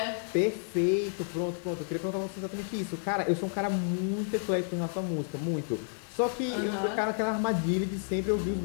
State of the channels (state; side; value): silent; right; 55 dB below the other